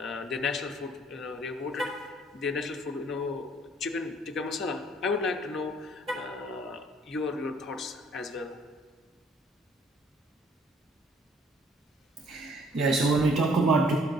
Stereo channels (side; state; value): both; normal; correlation 0.59